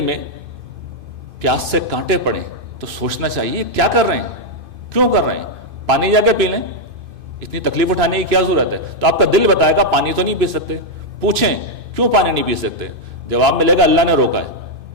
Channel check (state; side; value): late; left; 2.5 ms